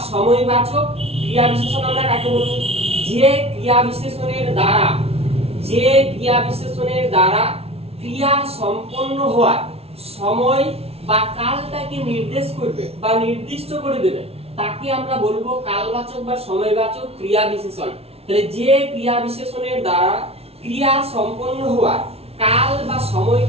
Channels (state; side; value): late; left; 0.30 ms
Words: সময়বাচক ক্রিয়া বিশেষণ আমরা কাকে বলবো? যে ক্রিয়া বিশেষণের দ্বারা ক্রিয়া সম্পন্ন হওয়ার সময় বা কালটাকে নির্দেশ করবে বা নির্দিষ্ট করে দেবে, তাকে আমরা বলবো কালবাচক বা সময়বাচক ক্রিয়া বিশেষণ। তাহলে যে ক্রিয়া বিশেষণের দ্বারা ক্রিয়া সম্পন্ন হওয়ার কাল বা